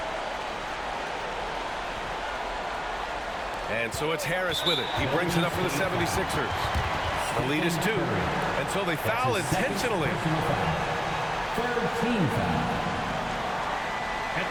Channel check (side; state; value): both; identical; correlation 1.00